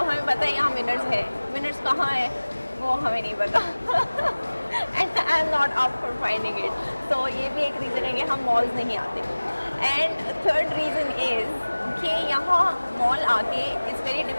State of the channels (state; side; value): inverted; both; correlation -1.00